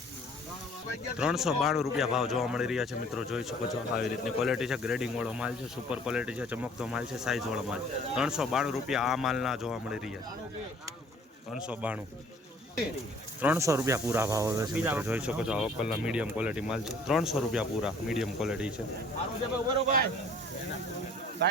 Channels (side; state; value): both; normal; correlation 0.54